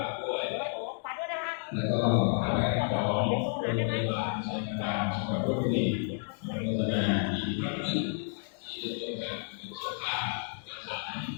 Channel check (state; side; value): silent; right; 57 dB below the other